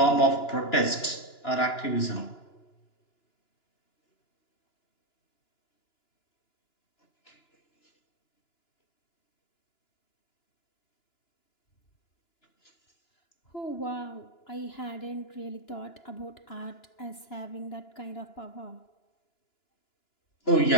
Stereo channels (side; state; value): right; late; 2.9 ms